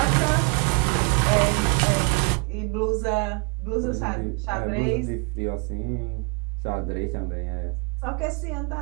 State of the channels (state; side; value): quieter; left; 31.6 dB